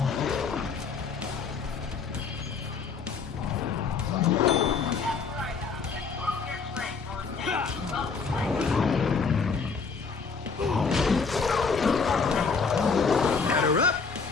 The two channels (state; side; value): quieter; right; 5.1 dB